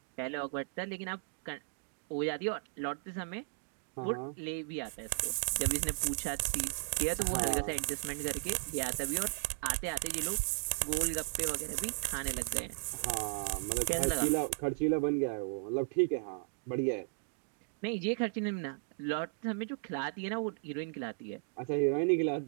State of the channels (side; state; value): left; silent; digital silence